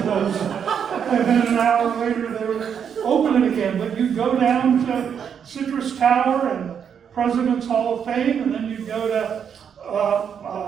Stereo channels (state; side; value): quieter; left; 7.7 dB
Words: close it. And then an hour later they would open it again. But you'd go down to Citrus Tower and President's Hall of Fame, and then you'd go to